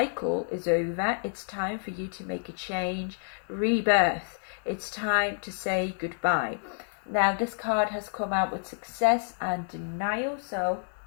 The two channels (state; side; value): silent; right; digital silence